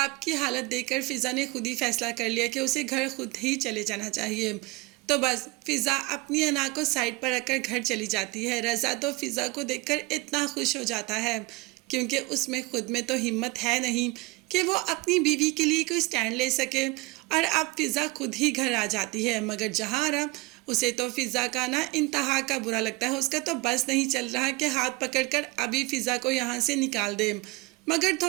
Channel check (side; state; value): left; quieter; 23.8 dB